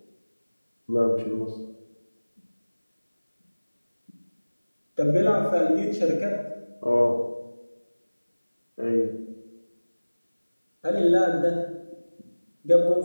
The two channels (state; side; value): inverted; both; correlation -1.00